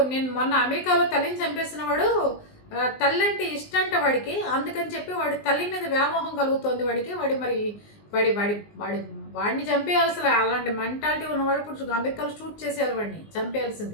నేను మొన్న అమెరికాలో తల్లిని చంపేసిన వాడు, తల్లి ఇష్టంట వాడికి, అందుకని చెప్పి వాడి తల్లి మీద వ్యామోహం కలుగుతోంది వాడికి. వాడిని చంపేయాలి. అసలు అలాంటి మెంటాలిటీ ఉన్నవాడు ఇప్పుడు అమెరికాలో షూట్ చేసేయాలి, వాడిని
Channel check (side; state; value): right; late; 19 ms